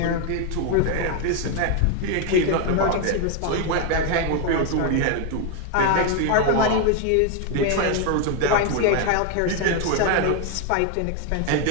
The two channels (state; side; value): different; both; correlation 0.01